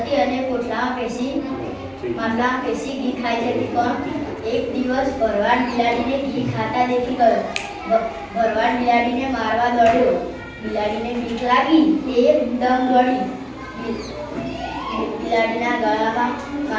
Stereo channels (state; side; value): identical; both; correlation 1.00